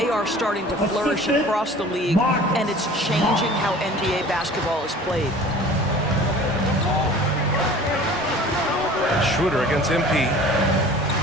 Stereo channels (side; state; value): both; normal; correlation 0.45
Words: are starting to flourish across the league, and it's changing how NBA basketball is played. Schroeder against MP.